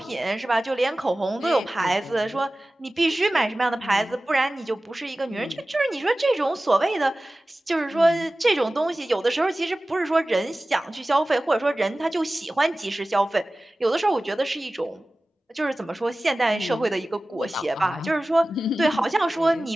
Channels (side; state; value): both; normal; correlation 0.97